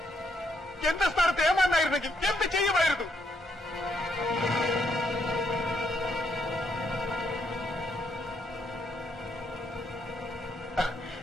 എന്റെ സ്ഥാനത്ത് ഏമാനായിരുന്നെങ്കിൽ എന്ത് ചെയ്യുമായിരുന്നു?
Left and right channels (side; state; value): both; normal; correlation 0.75